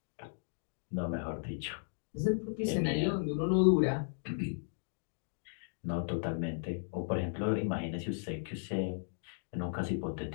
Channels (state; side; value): silent; right; digital silence